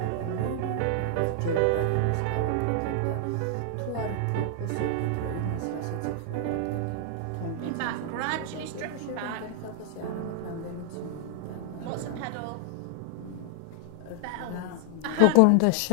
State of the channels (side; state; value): both; different; correlation 0.00